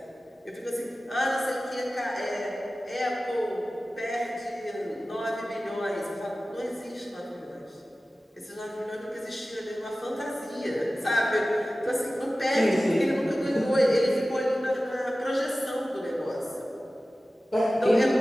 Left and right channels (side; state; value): both; normal; correlation 0.96